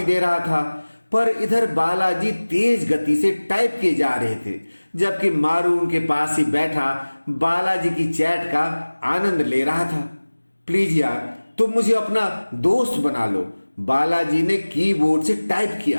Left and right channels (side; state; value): both; inverted; correlation -1.00